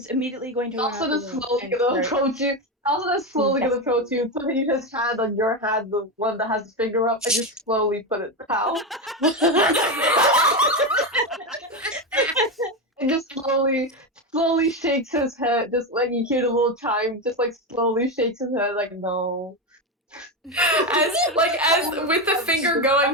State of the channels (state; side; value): normal; both; correlation 0.13